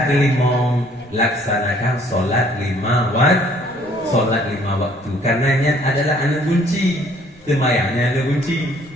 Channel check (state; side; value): normal; both; correlation 0.60